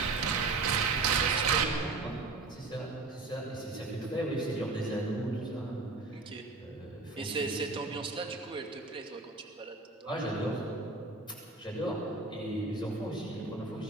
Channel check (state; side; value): quieter; left; 3.5 dB